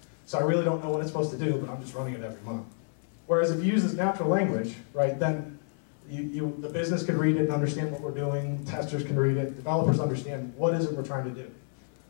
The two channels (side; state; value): right; silent; 58 dB below the other